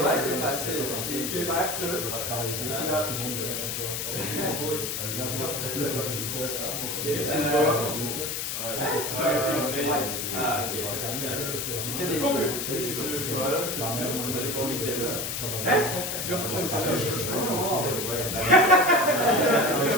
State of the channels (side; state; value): left; noise; hiss, 3 dB below the sound